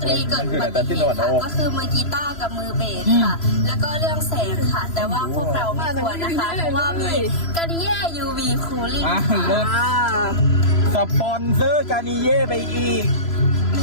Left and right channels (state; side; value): late; right; 3.0 ms